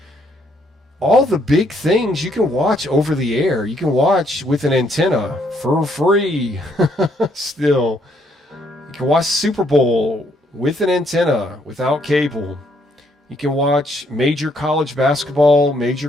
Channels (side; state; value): both; normal; correlation 0.71